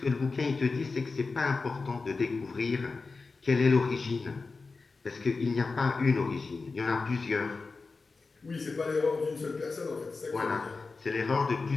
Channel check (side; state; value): right; quieter; 4.1 dB